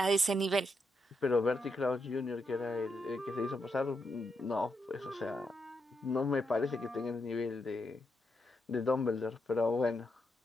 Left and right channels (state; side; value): normal; both; correlation 0.82